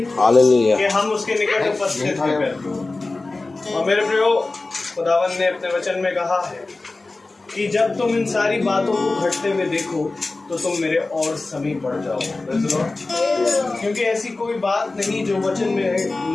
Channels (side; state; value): right; quieter; 3.3 dB